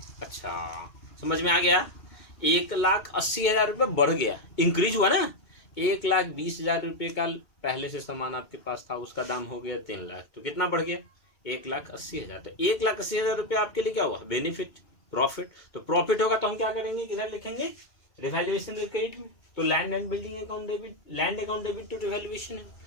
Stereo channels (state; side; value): late; right; 2.1 ms